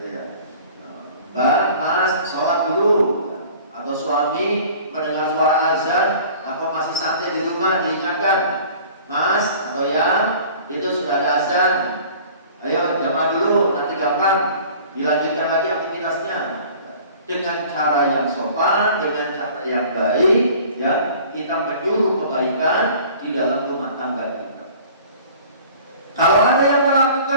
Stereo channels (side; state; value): both; inverted; correlation -0.47